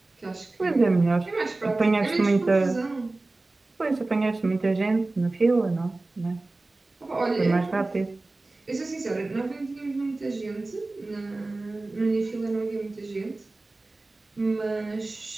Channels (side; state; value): left; quieter; 3.1 dB